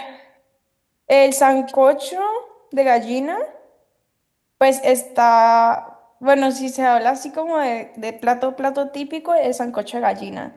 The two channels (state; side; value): identical; both; correlation 1.00